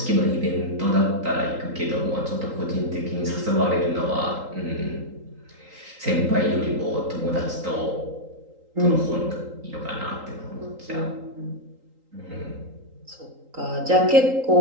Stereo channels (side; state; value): left; late; 3.8 ms